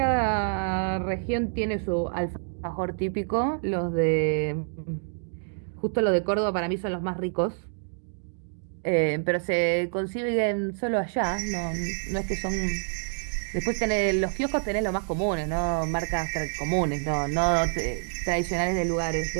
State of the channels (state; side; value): silent; left; digital silence